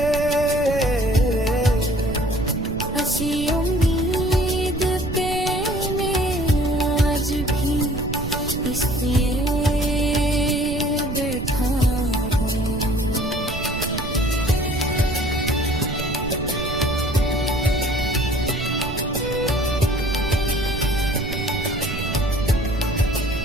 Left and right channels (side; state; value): right; noise; rumble, 7 dB below the sound